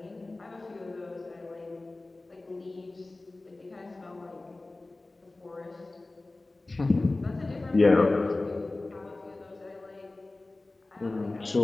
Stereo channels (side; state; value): right; quieter; 3.1 dB